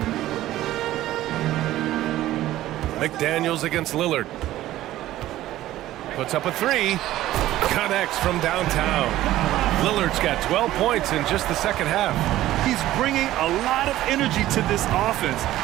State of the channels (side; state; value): left; quieter; 14.7 dB